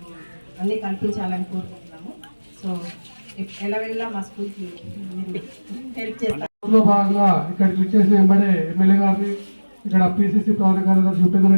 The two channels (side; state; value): both; inverted; correlation -1.00